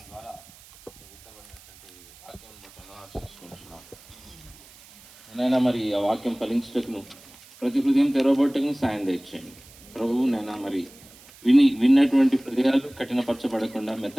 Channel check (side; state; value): right; noise; hiss, 23 dB below the sound